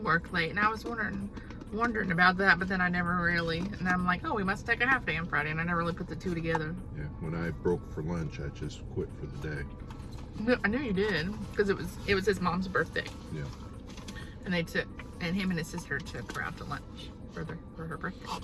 work late, and I was wondering about that, but then I never really, and I'm like, oh, we must take a half day on Friday, and I never really put the two together. Yeah, when I broke for lunch, I just quit for the day. No, I knew you did, because it was his mom's birthday. Yeah. And and him and his sister took her out to lunch for her birthday.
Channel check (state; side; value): identical; both; correlation 1.00